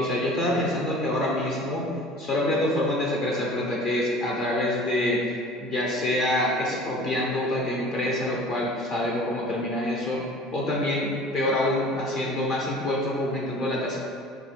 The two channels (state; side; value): normal; both; correlation 0.44